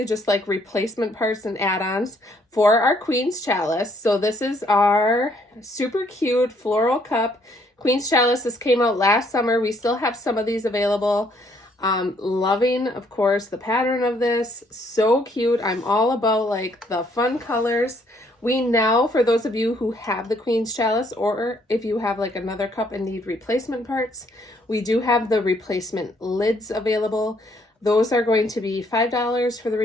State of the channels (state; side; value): normal; both; correlation 0.67